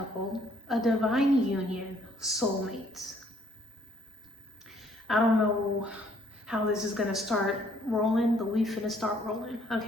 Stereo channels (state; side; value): normal; both; correlation 0.64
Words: a divine union, soulmates. I don't know how this is gonna start rolling, but we finna start rolling,